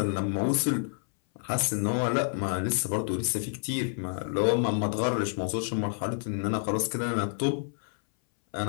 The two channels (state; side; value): silent; right; 59 dB below the other